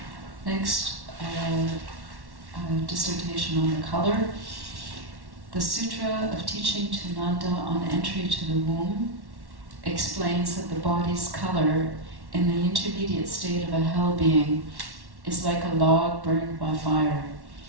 Next, dissertation on the color. The Sutra of Teaching to Nanda on Entry to the Womb explains that the body's color in the intermediate state of a hell being is like a log burned by fire,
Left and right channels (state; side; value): late; left; 1.1 ms